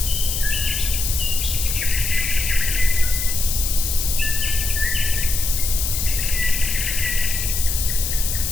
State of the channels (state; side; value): noise; left; hiss, 2 dB below the sound